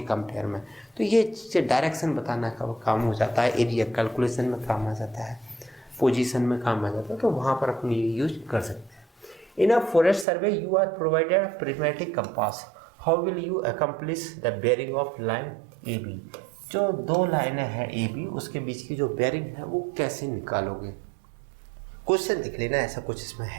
कंपेयर में। तो ये चीज़ें डायरेक्शन बताना का काम हो जाता है, एरिया कैलकुलेशन में काम आ जाता है, पोजीशन में काम आ जाता है, तो वहाँ पर अपन ये यूज कर सकते हैं। In a forest survey you are provided a prismatic compass, how will you accomplish the bearing of line A B. जो दो लाइनें हैं ए बी, उसके बीच की जो बेयरिंग है वो कैसे निकालोगे। क्वेश्चन देख लेना, ऐसा कुछ इसमें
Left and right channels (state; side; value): drops out; left; at 10.2 s